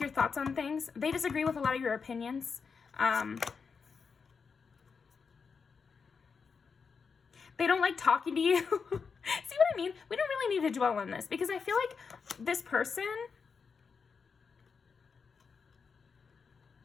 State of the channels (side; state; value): right; quieter; 5.5 dB